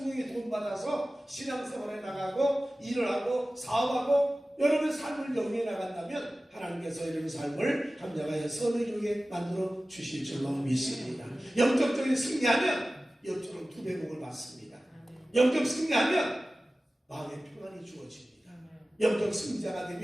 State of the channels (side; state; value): both; normal; correlation 0.96